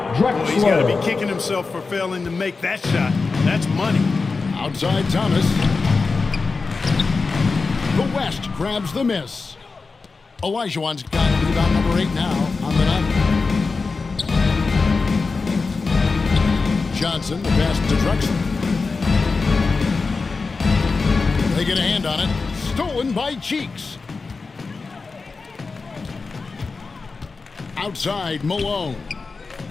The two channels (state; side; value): quieter; right; 4.3 dB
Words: Well, he's got to Drexler. be kicking himself for failing to make that shot. That's money. outside Thomas. The West grabs the miss. Olajuwon's got rebound number 8 now on the night. Johnson, the pass to Drexler. They get a hand on it. Stolen by Cheeks. Outside, Malone.